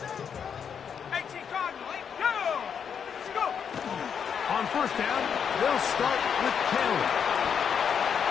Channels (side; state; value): right; quieter; 7.3 dB